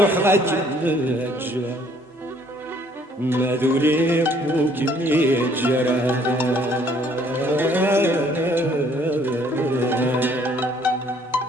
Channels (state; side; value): normal; both; correlation 0.61